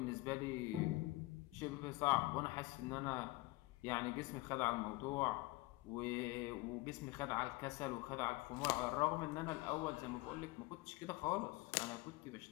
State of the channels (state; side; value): quieter; right; 21.2 dB